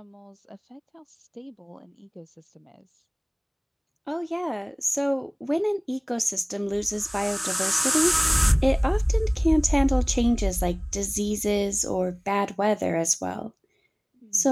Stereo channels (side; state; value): both; identical; correlation 1.00